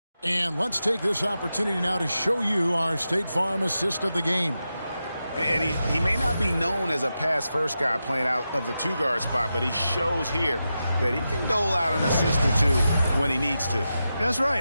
And let's take this opportunity now to show you our State Farm assist of the game. And he may not be known as a pass-first guy playing out of the 2-guard spot, but he shows here that he can dole out an assist or 2 when he needs to. That's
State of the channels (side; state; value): both; inverted; correlation -0.90